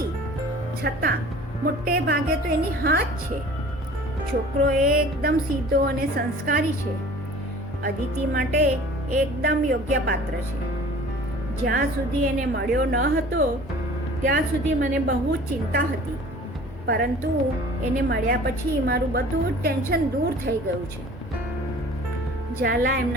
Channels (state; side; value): normal; both; correlation 0.46